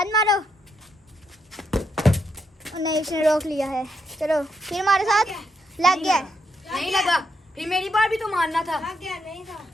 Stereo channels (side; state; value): both; normal; correlation 0.79